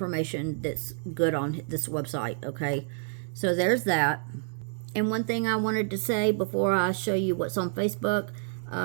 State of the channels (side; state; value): left; silent; digital silence